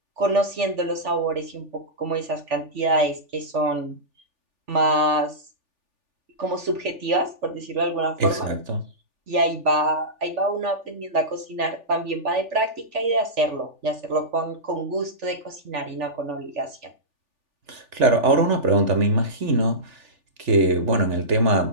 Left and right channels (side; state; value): left; late; 3.4 ms